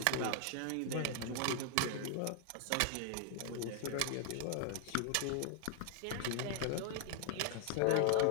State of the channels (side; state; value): both; different; correlation 0.00